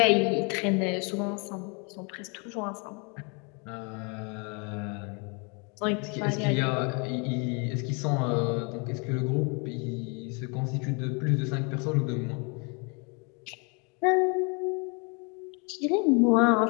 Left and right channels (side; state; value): right; quieter; 33.7 dB